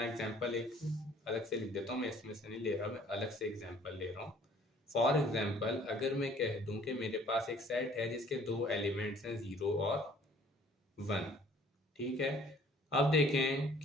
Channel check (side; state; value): both; normal; correlation 0.56